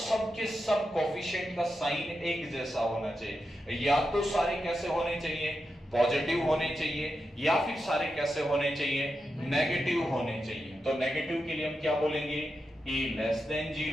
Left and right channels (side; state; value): both; normal; correlation 0.88